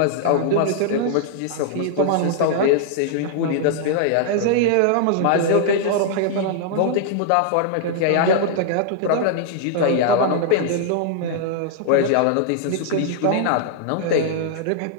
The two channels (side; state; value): both; different; correlation -0.01